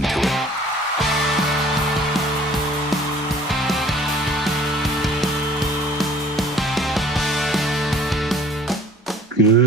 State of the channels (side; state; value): both; normal; correlation 0.52